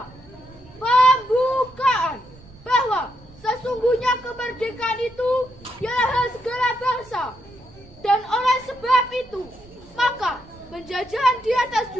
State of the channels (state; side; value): noise; right; rumble, 23 dB below the sound